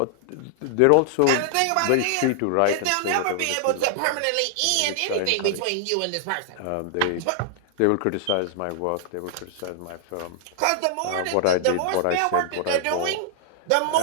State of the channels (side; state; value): both; different; correlation -0.01